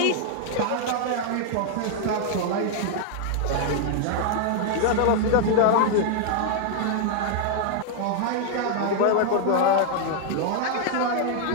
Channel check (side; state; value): both; different; correlation 0.00